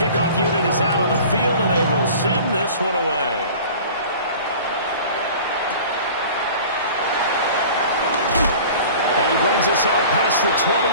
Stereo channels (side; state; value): both; inverted; correlation -0.42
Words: unit is out on the field, and they will send this one away. And he brings us out past the